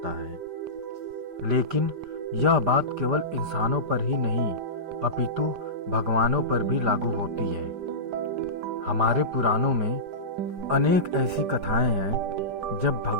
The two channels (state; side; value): late; left; 5.0 ms